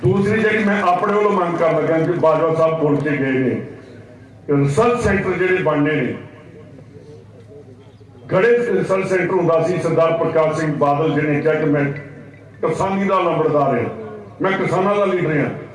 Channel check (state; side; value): identical; both; correlation 1.00